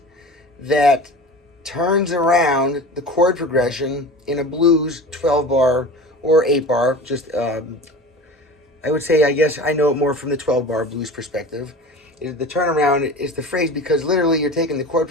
that turns around the chord progression in a blues 12 bar or 8 bar. I would say, I guess I know it more from the 12 bar blues perspective. The turnaround is the phrase because literally you're taking the chord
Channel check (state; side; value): normal; both; correlation 0.35